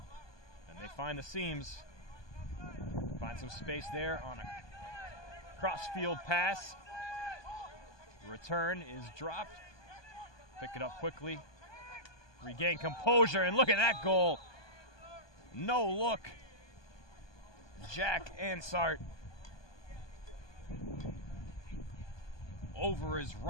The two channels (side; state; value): right; late; 1.2 ms